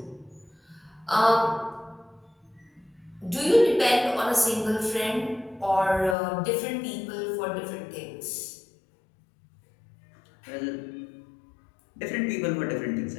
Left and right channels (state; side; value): drops out; right; at 6.2 s